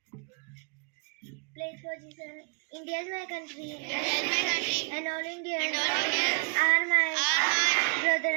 Pledge position. India is my country. And all Indians are my brother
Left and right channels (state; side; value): quieter; left; 38.1 dB